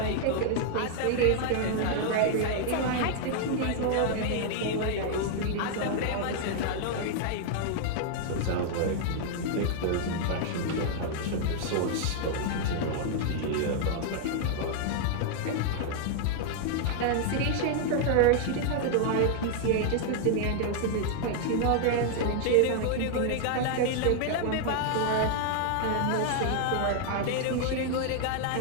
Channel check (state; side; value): different; both; correlation 0.00